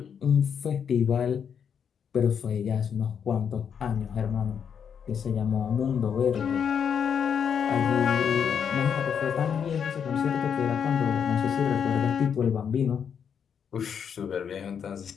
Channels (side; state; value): right; quieter; 7.5 dB